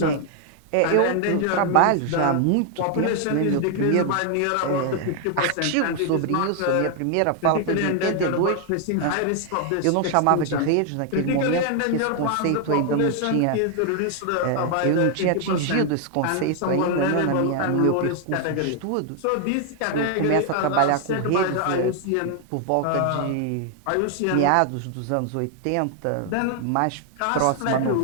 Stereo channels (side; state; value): both; different; correlation 0.00